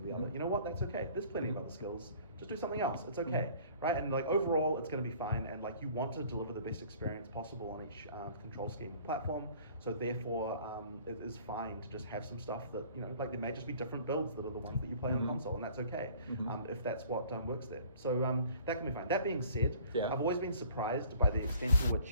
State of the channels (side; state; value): both; inverted; correlation -0.51